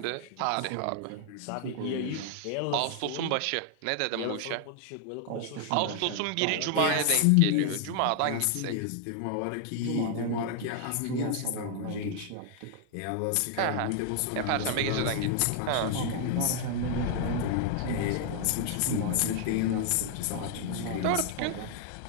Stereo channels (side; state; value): both; different; correlation 0.00